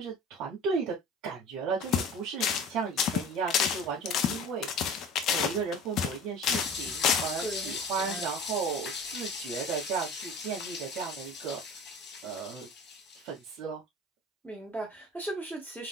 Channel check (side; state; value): both; normal; correlation 0.40